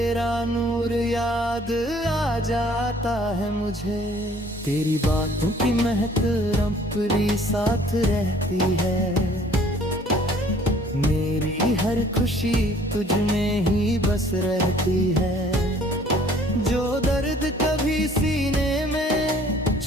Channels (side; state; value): both; normal; correlation 0.56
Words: नूर याद आ जाता है मुझे। तेरी बातों की महक रंपरी साथ रहती है, मेरी हर खुशी तुझ में ही बस रहती है। जो दर्द कभी सीने में